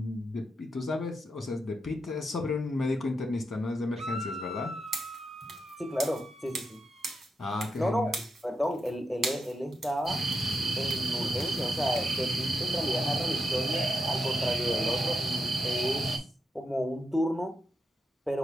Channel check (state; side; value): normal; both; correlation 0.85